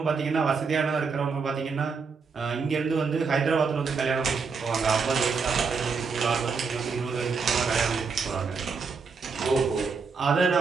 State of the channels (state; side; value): quieter; left; 5.1 dB